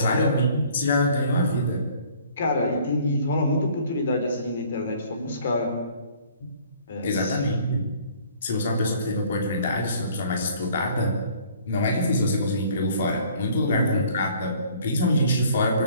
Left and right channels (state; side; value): inverted; both; correlation -0.56